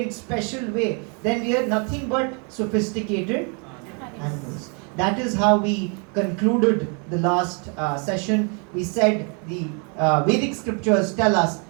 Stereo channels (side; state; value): left; quieter; 36.4 dB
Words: special way, then we are nothing but sophisticated animals. That is how we concluded the last session. We said the Vedic scriptures tell us